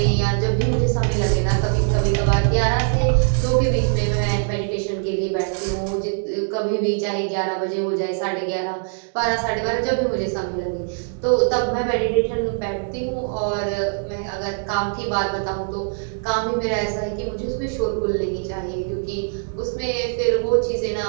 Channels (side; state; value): left; silent; digital silence